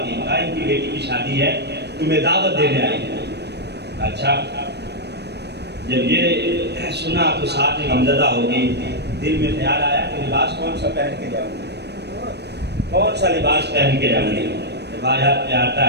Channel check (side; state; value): left; late; 0.49 ms